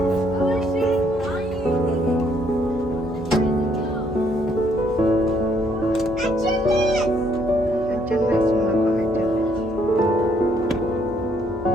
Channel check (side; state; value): both; normal; correlation 0.68